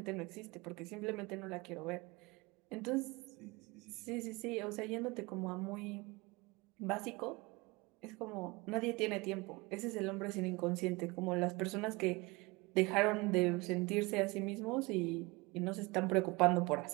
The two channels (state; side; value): quieter; left; 24.5 dB